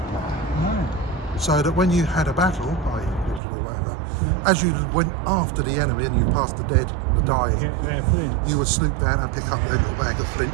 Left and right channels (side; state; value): left; drops out; at 3.4 s